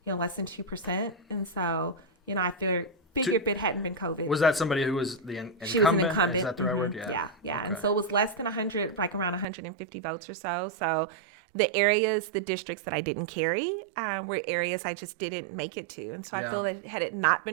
less than 2%. And so, I figured if it hadn't been COVID. Was that somebody who was the incumbent? She was an incumbent. Is that the right word? Yeah. Yeah. Okay. And so it was less than 100, like around 150 votes or so. So the districts that I didn't carry were areas I just didn't make it to. And so I feel that had it not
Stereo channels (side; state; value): left; drops out; at 9.5 s